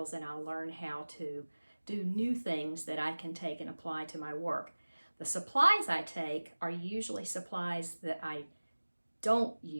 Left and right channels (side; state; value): both; inverted; correlation -1.00